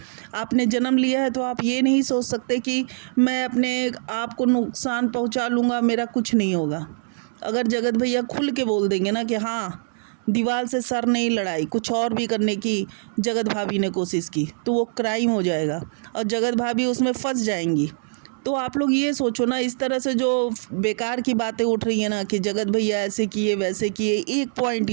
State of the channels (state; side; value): silent; left; digital silence